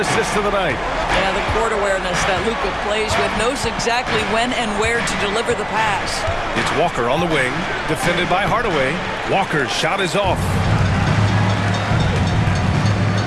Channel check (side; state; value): both; identical; correlation 1.00